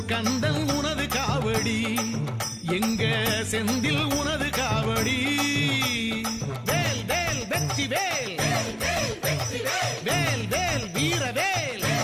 கந்தன் உனது காவடி எங்க செந்தில் உனது காவடி வேல் வேல் வெற்றி வேல் வேல் வேல் வீரவேல்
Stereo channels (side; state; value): both; identical; correlation 1.00